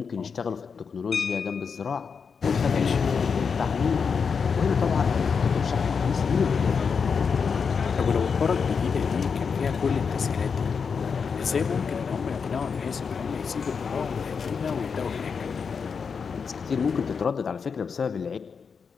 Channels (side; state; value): right; quieter; 5.9 dB